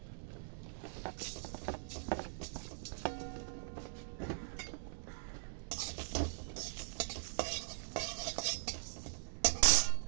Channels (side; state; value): left; silent; digital silence